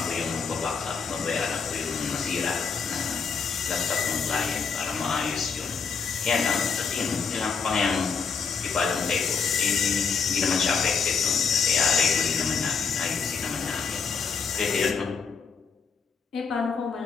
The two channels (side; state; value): right; quieter; 5.7 dB